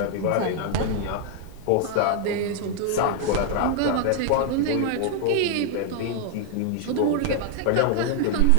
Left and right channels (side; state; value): both; different; correlation 0.00